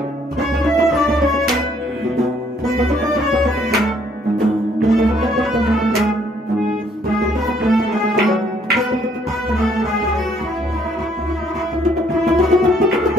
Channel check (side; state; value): both; normal; correlation 0.66